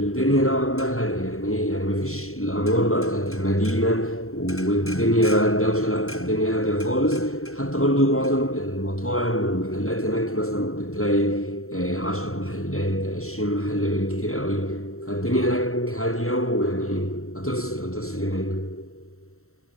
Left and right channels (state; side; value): late; right; 0.63 ms